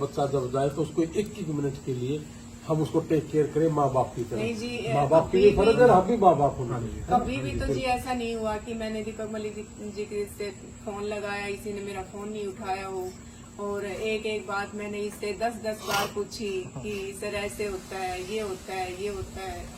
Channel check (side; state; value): both; identical; correlation 1.00